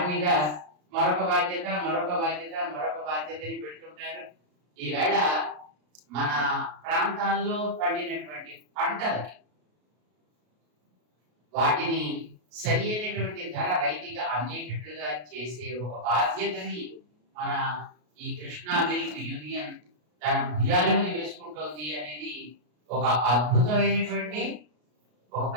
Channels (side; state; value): left; late; 33 ms